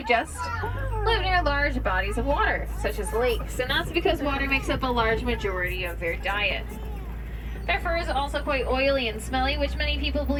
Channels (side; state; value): both; identical; correlation 1.00